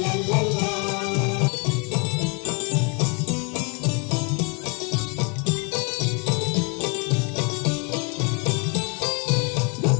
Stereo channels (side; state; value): right; quieter; 34.1 dB